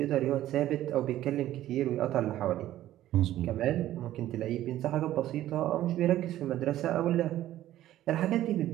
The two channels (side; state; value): left; quieter; 13.6 dB